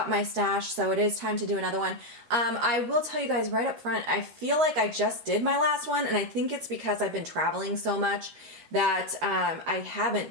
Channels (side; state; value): left; late; 13 ms